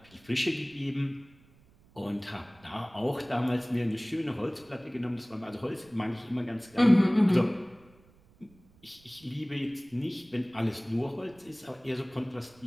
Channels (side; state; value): right; noise; rumble, 28 dB below the sound